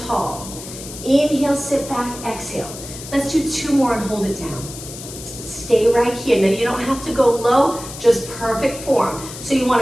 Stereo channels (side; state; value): left; noise; hiss, 12 dB below the sound